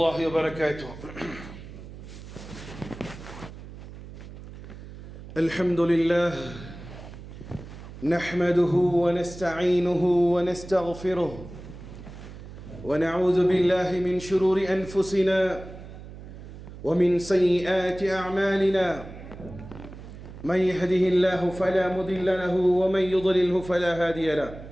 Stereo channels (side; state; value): right; noise; hum, 14 dB below the sound